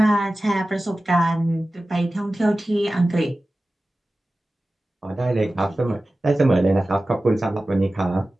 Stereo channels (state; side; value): normal; both; correlation 0.96